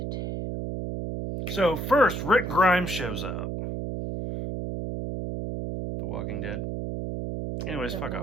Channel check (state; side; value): noise; right; hum, 4 dB below the sound